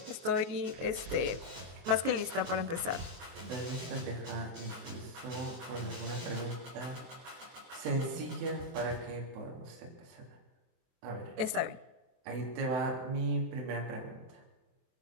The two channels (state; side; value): late; left; 23 ms